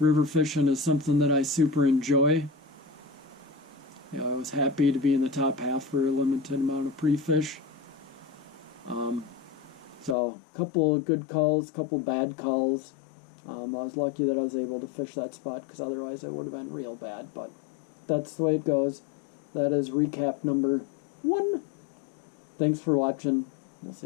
fishing is something that I super enjoy. I was happy to be in the top half for a limited amount of pre-fish. So a couple of good calls, a couple bad calls. I was lucky that I was able to fish that spot, because otherwise it would have been real bad. But that's the way it goes. That is recap number 1. Thanks for watching. We'll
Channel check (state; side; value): drops out; right; at 10.2 s